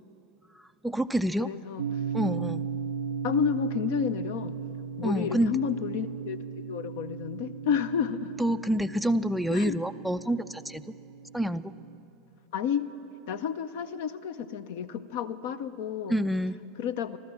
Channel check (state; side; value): normal; both; correlation 0.37